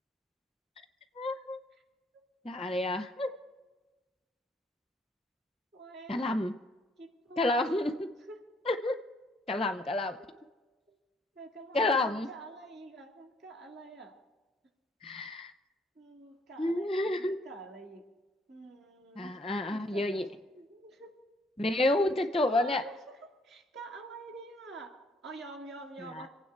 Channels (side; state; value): both; normal; correlation 0.65